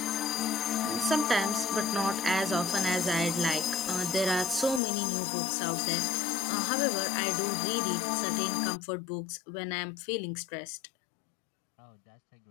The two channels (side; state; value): right; drops out; at 4.8 s